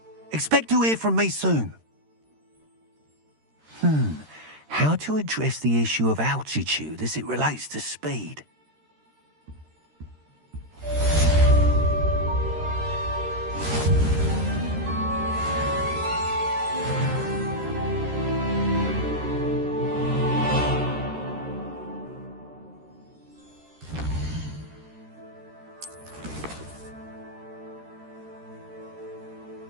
Expect to hear from me soon. How to address the issue of altitude as it relates to speed.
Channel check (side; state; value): left; late; 13 ms